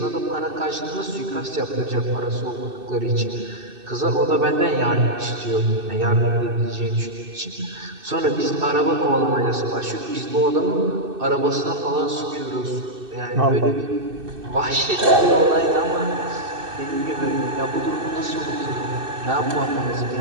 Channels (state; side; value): late; left; 2.6 ms